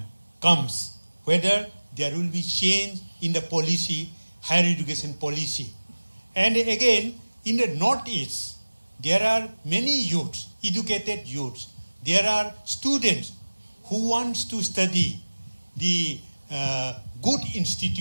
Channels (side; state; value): both; inverted; correlation -1.00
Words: comes, whether there will be change in the policy, higher education policy. And again, in the Northeast, there are many youths, educated youths. There are students who want to study the good